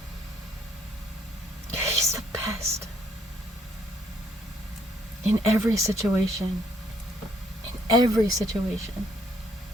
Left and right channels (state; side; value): normal; both; correlation 0.69